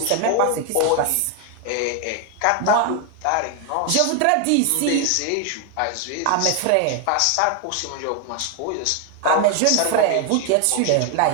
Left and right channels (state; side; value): different; both; correlation 0.01